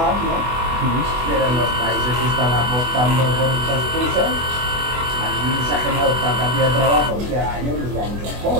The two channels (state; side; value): late; left; 24 ms